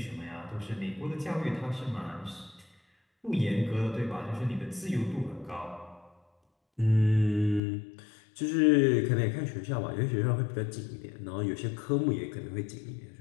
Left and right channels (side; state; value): right; drops out; at 7.6 s